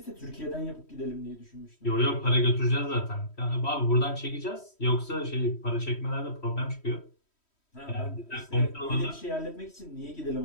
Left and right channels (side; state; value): right; late; 3.1 ms